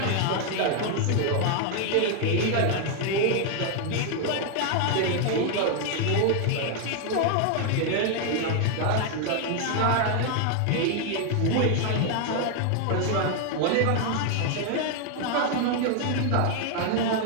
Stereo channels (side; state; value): both; different; correlation 0.00